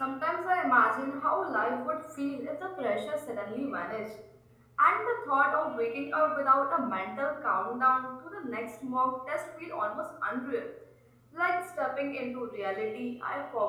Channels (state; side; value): identical; both; correlation 1.00